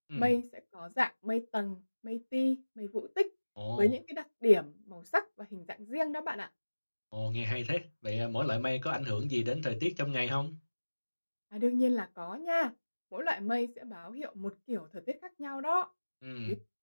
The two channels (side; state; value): both; inverted; correlation -1.00